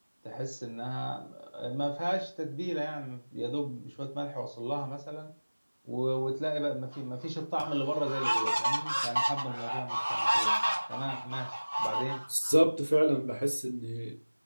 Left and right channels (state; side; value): inverted; both; correlation -1.00